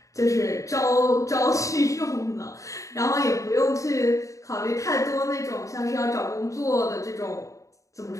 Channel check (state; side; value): late; right; 0.16 ms